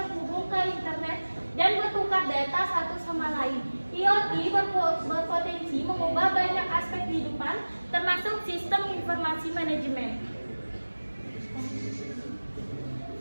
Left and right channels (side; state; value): both; inverted; correlation -1.00